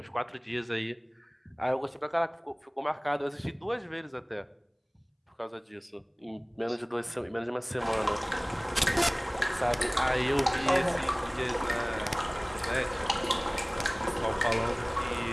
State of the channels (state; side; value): identical; both; correlation 1.00